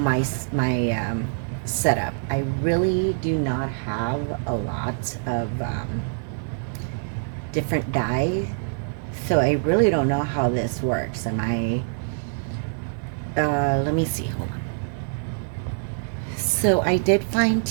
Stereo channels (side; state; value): left; silent; digital silence